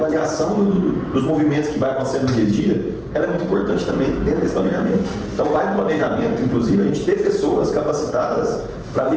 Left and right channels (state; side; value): identical; both; correlation 1.00